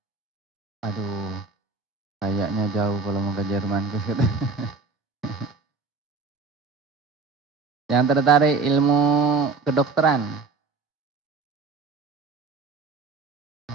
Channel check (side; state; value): left; quieter; 4.6 dB